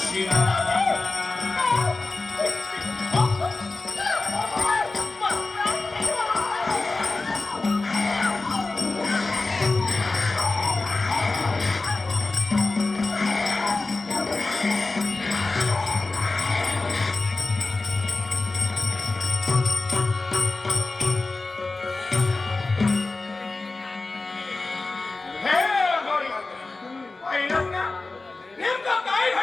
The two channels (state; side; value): quieter; right; 3.5 dB